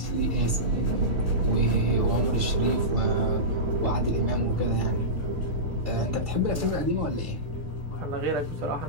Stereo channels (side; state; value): left; late; 6.5 ms